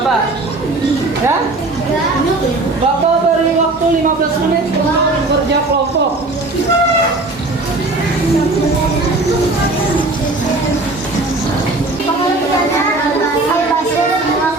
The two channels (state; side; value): quieter; left; 3.0 dB